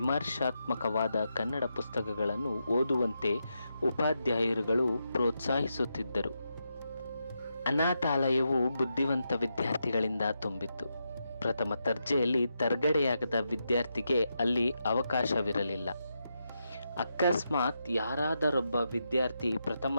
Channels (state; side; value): inverted; both; correlation -0.85